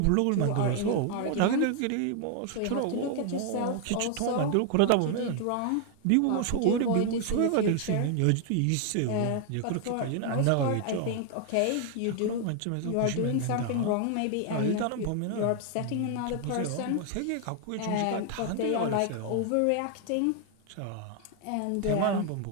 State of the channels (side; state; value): both; different; correlation 0.00